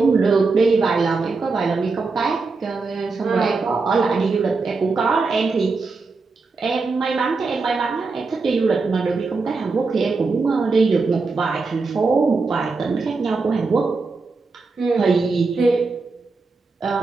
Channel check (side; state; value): left; quieter; 4.1 dB